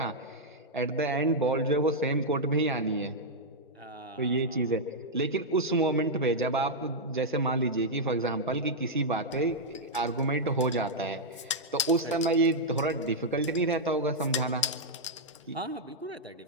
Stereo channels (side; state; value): both; normal; correlation -0.06